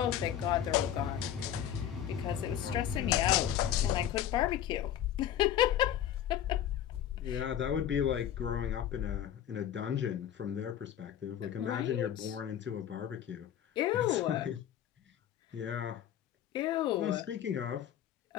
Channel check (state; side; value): quieter; right; 10.5 dB